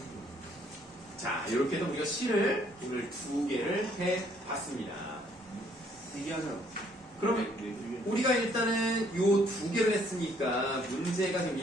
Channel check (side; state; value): both; normal; correlation 0.65